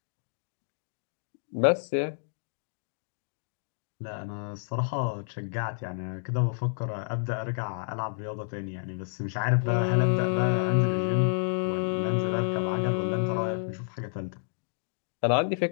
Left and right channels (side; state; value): right; silent; digital silence